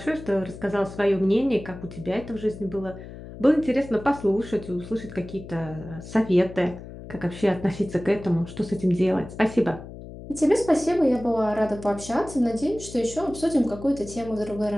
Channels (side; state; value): left; noise; hum, 13 dB below the sound